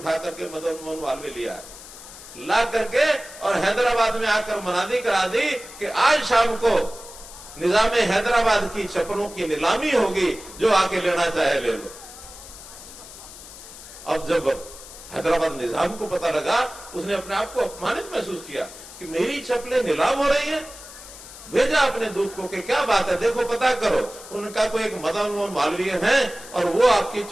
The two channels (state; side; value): noise; left; hiss, 16 dB below the sound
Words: करके मदन मोहन मालवीय लिया, ला करके और हैदराबाद में आकर मनादी करा दी कि आज शाम को निजाम हैदराबाद की चप्पलों की नीलामी होगी, जो आके लेना चाहे ले लो। अब जब हैदराबाद निजाम को पता लगा, उसने अपने आप को अपमानित महसूस किया कि मेरी चप्पलें नीलाम हो रही हैं। भेजा अपने दूत को कि क्या बात है, देखो पता करो। उनका कोई एक मदन मोहन मालवीय है और वो आपकी